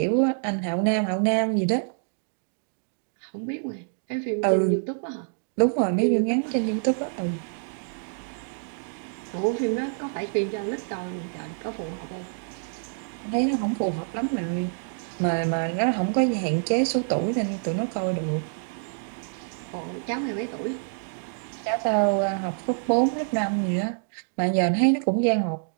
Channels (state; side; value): silent; left; digital silence